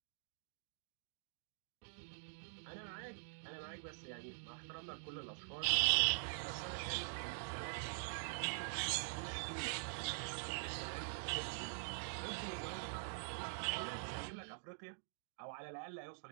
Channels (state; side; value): silent; left; digital silence